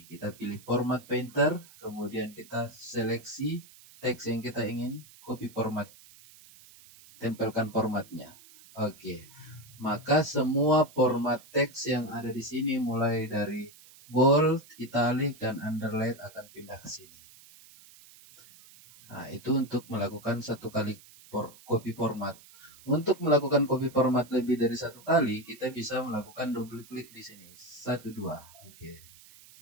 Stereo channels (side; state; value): right; noise; hiss, 22 dB below the sound